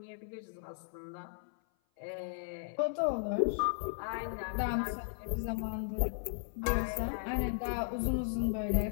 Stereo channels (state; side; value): silent; right; 54 dB below the other